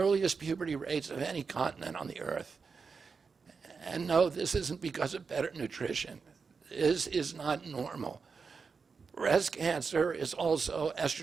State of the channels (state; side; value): quieter; left; 5.2 dB